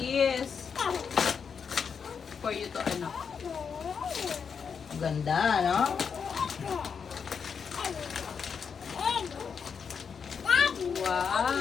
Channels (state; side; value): quieter; right; 6.4 dB